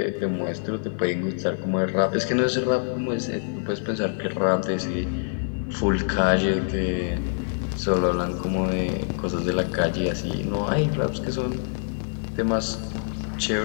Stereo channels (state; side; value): silent; right; digital silence